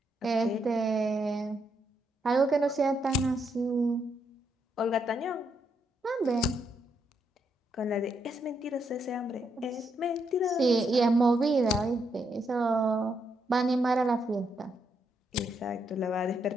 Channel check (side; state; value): both; normal; correlation 0.78